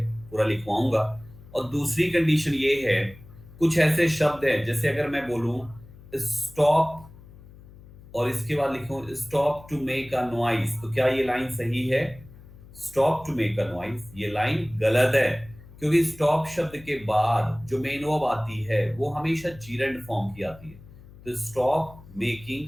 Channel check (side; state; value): left; noise; hum, 20 dB below the sound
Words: पूरा लिखवाऊंगा। और दूसरी कंडीशन ये है, कुछ ऐसे शब्द हैं जैसे अगर मैं बोलूं स्टॉप और इसके बाद लिखूं stop to make a noise, तो क्या ये लाइन सही है? Stop to make a noise, ये लाइन गलत है, क्योंकि स्टॉप शब्द के बाद जो मेन वर्ब आती है वो हमेशा जीरेंड फॉर्म की आती है। तो स्टॉप मेकिंग